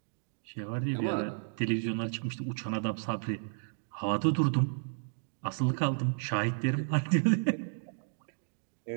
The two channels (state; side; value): silent; left; digital silence